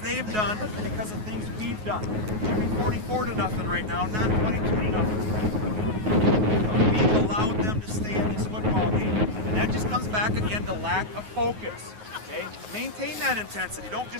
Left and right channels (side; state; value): left; late; 9.4 ms